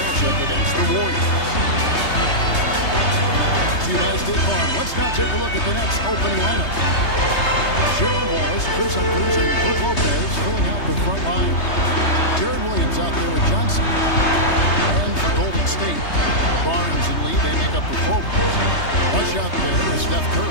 against the Warriors. See you by State Farm. Let's now take a look at the Nets opening lineup. Cheryl Wallace, Chris Humphries, and Brooke Lopez filling out the front line. Jaron Williams out there with Johnson. And for Golden State, Barnes and Lee, they make up the forwards. Rush out there is Steph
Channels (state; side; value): late; right; 3.2 ms